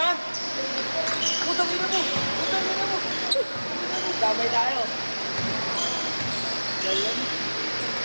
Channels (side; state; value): both; inverted; correlation -1.00